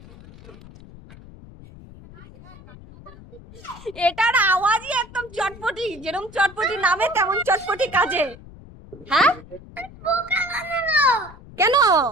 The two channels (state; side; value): noise; left; rumble, 19 dB below the sound